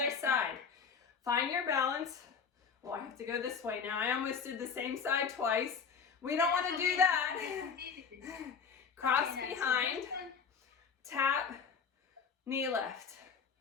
side. Find your balance. Well, I have to go this way now. I almost did the same side twice. We don't want to do that. Cross behind, tap, knee lift.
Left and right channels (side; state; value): right; quieter; 6.1 dB